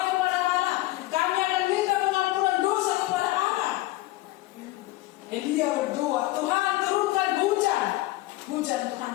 kepada Allah. Kami akan minta pengampunan dosa kepada Allah. Elia berdoa, Tuhan turunkan hujan. Hujan Tuhan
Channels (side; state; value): right; quieter; 17.9 dB